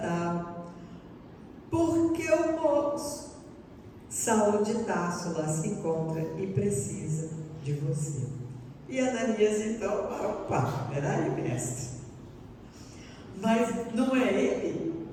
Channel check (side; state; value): both; identical; correlation 1.00